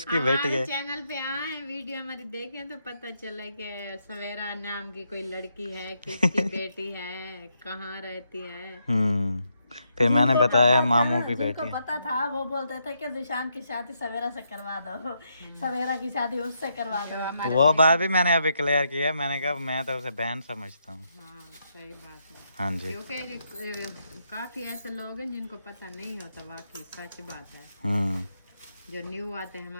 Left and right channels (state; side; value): inverted; both; correlation -0.79